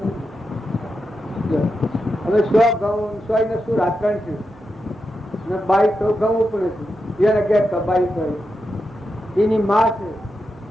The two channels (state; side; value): normal; both; correlation 0.87